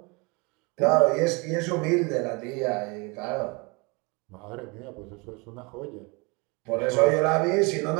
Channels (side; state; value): left; quieter; 28.7 dB